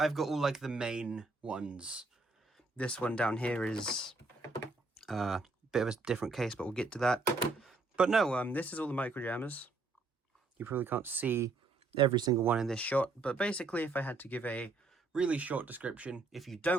got all, like, the main ones. This one down here is a bit of a different case, but we'll get to that. But no, this is all the microjammers. You probably can't see every single one in this shot, but basically if I had to give a really short description, if you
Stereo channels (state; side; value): quieter; left; 3.6 dB